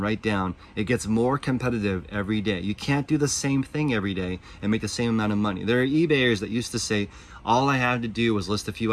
write down. It gets more competitive every day. You can't do the same thing every day and make the same amount of money. There are eBayers that used to say, all I had to do was list a few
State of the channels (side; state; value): both; identical; correlation 1.00